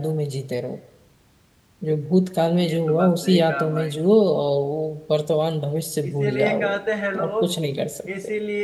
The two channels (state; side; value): identical; both; correlation 1.00